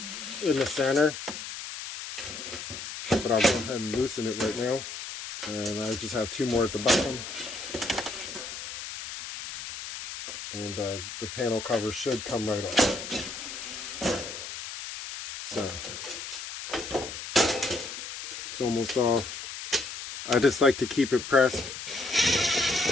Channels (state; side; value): noise; left; hiss, 9 dB below the sound